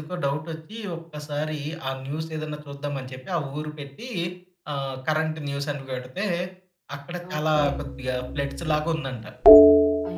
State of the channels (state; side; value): identical; both; correlation 1.00